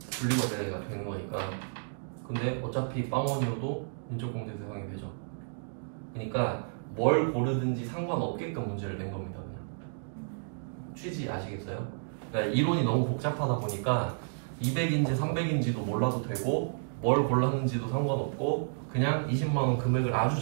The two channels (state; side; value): silent; left; digital silence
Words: 분리과세가 되는 거니까. 근데 어차피 빵원이어도 인적공제 대상이 되죠. 그러니까 뭘 고르든지 상관없게끔 문제를 낸 겁니다. 그냥. 취지 아시겠어요? 그러니까 이론이 너무 복잡하다 보니까 200인지 300인지도 몰라도 되고 뭘 골랐는지도 상관없고 그냥 20만 원 금액을 아주